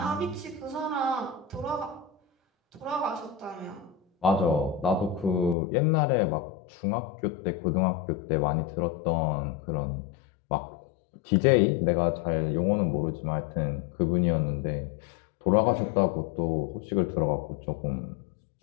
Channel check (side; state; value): right; drops out; at 5.6 s